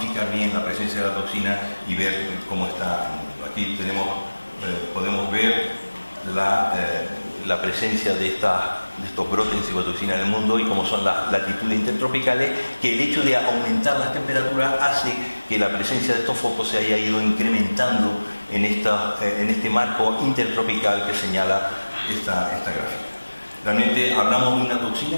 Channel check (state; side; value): inverted; both; correlation -1.00